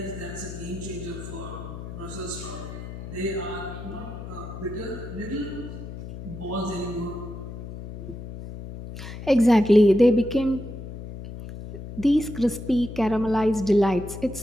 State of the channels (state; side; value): noise; left; hum, 10 dB below the sound